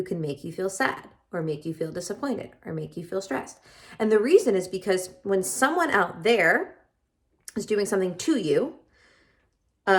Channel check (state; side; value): identical; both; correlation 1.00